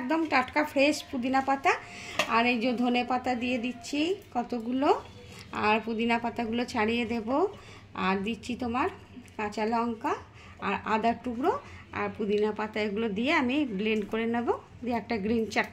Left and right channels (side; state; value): both; identical; correlation 1.00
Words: টাটকা ফ্রেশ পুদিনা পাতা, আর এই যে ধনে পাতা দিয়ে দিচ্ছি কতগুলো, আর পুদিনা পাতাগুলো ছাড়িয়ে দেব, আর দিচ্ছি তোমার কাঁচা লঙ্কা আর আদার টুকরো আর পুদিনা পাতা। এগুলো দিয়ে আমি ব্লেন্ড করে নেব, দিয়ে একটা গ্রিন